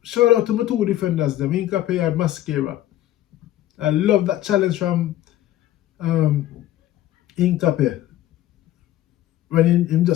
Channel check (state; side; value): quieter; right; 13.6 dB